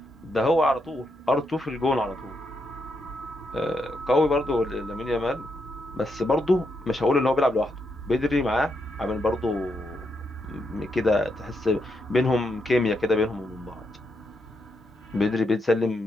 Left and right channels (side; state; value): both; normal; correlation 0.80